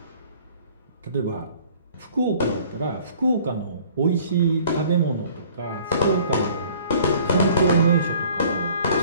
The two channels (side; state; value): both; inverted; correlation -0.54